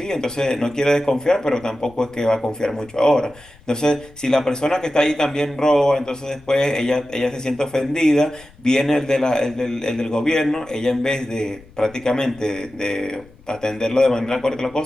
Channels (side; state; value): left; noise; rumble, 25 dB below the sound